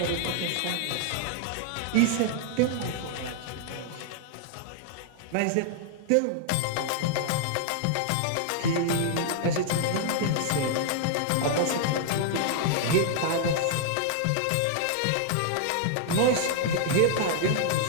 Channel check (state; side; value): different; both; correlation 0.00